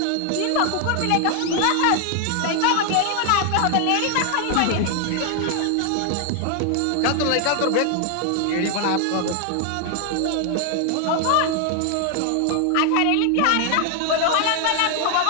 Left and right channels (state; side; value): different; both; correlation 0.00